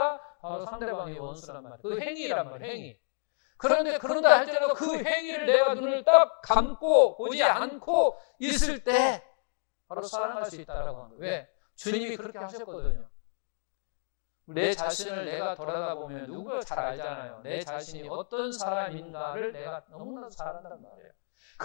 바로 상대방의 원수란 말이에요. 그 행위란 말이에요. 행위. 그런다 할지라도 그 행위를 내가 눈을 딱 감고 보지 않고 있을 때 바로 사랑할 수 있다라고 하는 거예요. 왜? 주님이 그렇게 하셨거든요. 내 자신을 내가 돌아다보면 누구가 잘 알잖아요. 내 자신이 어떤 사람인가를 내가 너무나 잘 안단 말이에요.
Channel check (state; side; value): silent; right; digital silence